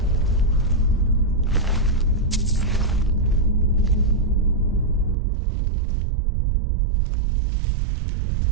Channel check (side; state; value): left; drops out; at 5.2 s